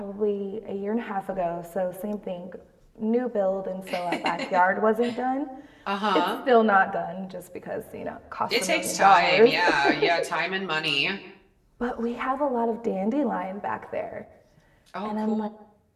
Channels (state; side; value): identical; both; correlation 1.00